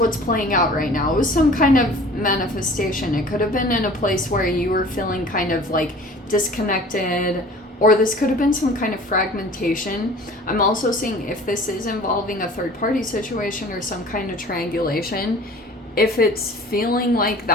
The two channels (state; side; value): normal; both; correlation 0.45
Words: playing out right now. It was some kind of manifestation. It could have been in a place where you were feeling kind of like disconnected, or this could have been some kind of fragmentation. I'm also seeing if this is involving a third party situation or some kind of triangulation. If it's feeling like